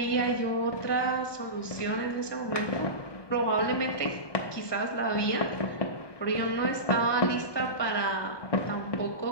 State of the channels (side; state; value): right; late; 1.2 ms